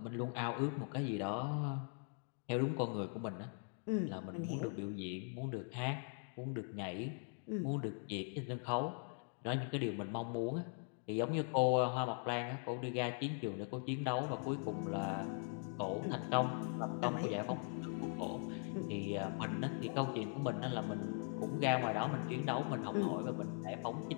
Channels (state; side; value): silent; right; 50 dB below the other